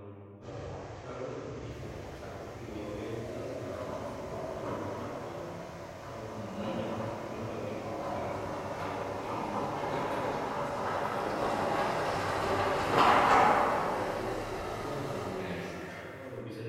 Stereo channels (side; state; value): both; identical; correlation 1.00